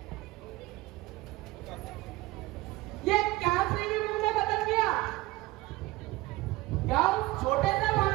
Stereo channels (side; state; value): left; quieter; 19.6 dB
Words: ये क्या श्री मुंह ने बदल दिया? क्या उस छोटे से